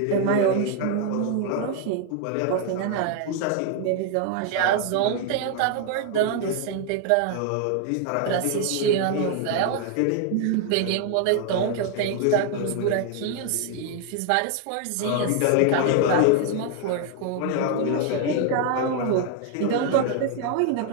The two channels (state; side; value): different; both; correlation 0.00